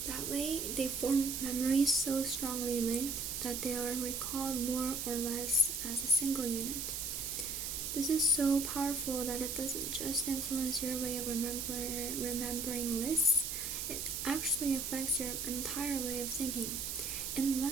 That way, they form memories so strongly linked that they are recalled more or less as a single unit. This is so powerful that it doesn't just influence your way of remembering lists, it actually affects your entire way of thinking. In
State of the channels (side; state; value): right; noise; hiss, 3 dB below the sound